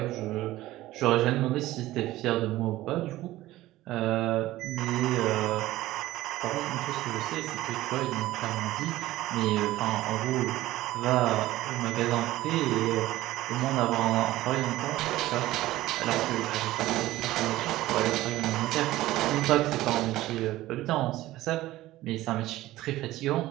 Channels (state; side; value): quieter; left; 16.4 dB